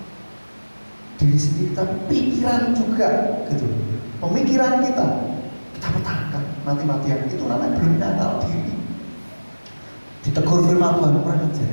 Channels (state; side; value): inverted; both; correlation -1.00